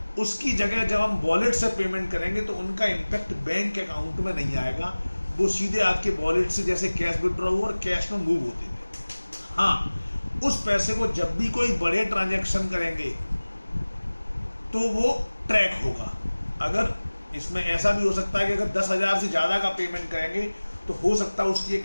उसकी जगह जब हम वॉलेट से पेमेंट करेंगे तो उनका इम्पैक्ट बैंक अकाउंट में नहीं आएगा, वो सीधे आपके वॉलेट से जैसे कैश विड्रॉ हो और कैश में मूव होते थे। हाँ, उस पैसे को जब भी कोई बड़े ट्रांजैक्शन करेंगे तो वो ट्रैक होगा। अगर इसमें ऐसा भी हो सकता है कि अगर 10,000 से ज़्यादा का पेमेंट करेंगे तो हो सकता है उसकी एक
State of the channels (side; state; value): both; inverted; correlation -1.00